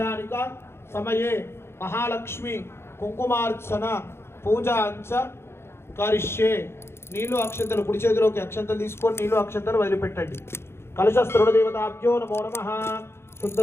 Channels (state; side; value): late; right; 0.12 ms